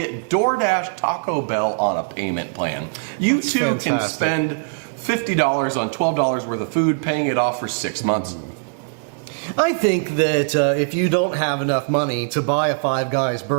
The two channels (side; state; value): left; silent; digital silence